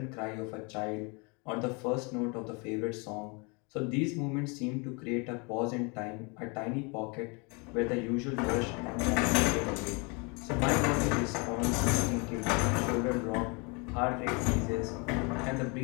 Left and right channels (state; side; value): quieter; right; 31.5 dB